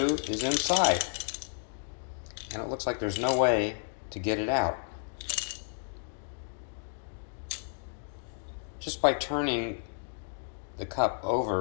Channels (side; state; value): right; silent; digital silence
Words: is inside, and it looks like there's no way to get it out. Just by turning the cup